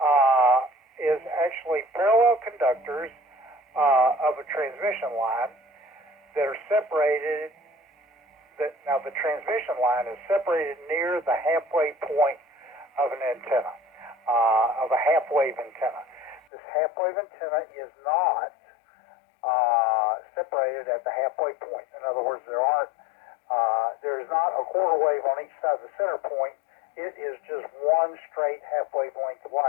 is actually parallel conductors of a transmission line that are separated. Now, the transmission line is separated near the halfway point of an antenna, of a half-wave antenna. This half-wave antenna is not separated at the halfway point. In other words, there is not a quarter wave on each side of the center point. It is just one straight half-wave length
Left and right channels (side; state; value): right; drops out; at 16.4 s